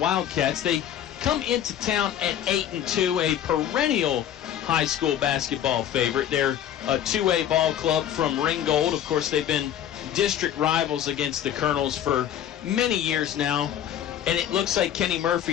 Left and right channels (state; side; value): quieter; right; 10.6 dB